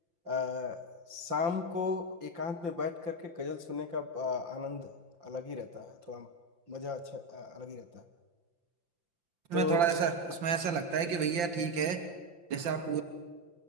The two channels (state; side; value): late; left; 5.8 ms